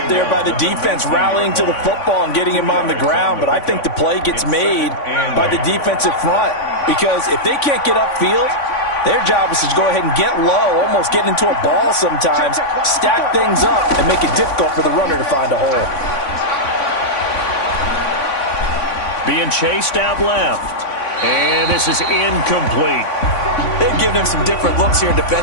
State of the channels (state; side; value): late; right; 3.5 ms